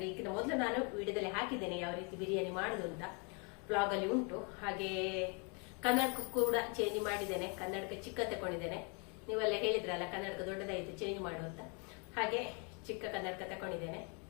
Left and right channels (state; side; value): quieter; right; 34.8 dB